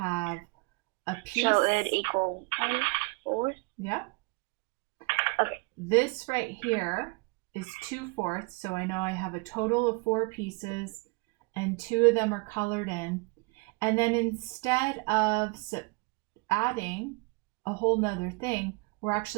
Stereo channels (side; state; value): left; quieter; 28.8 dB